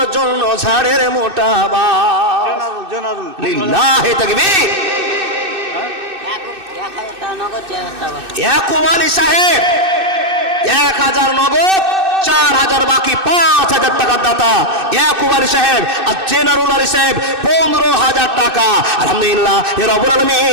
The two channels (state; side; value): late; left; 2.6 ms